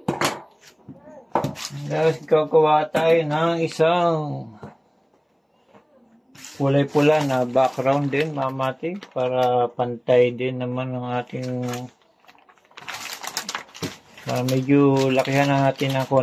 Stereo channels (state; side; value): identical; both; correlation 1.00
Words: Tapos gagawa tayo ng isang kulay pula na background din mamatik para pantay din naman ng ating medyo lakihan na natin ng